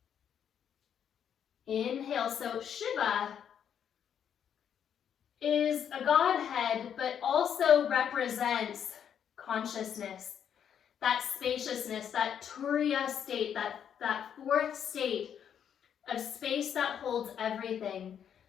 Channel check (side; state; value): right; quieter; 8.6 dB